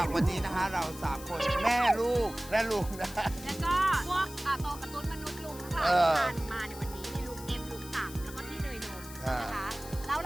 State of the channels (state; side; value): noise; left; hiss, 15 dB below the sound